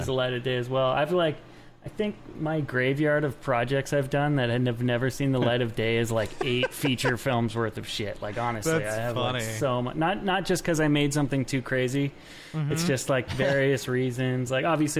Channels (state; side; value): identical; both; correlation 1.00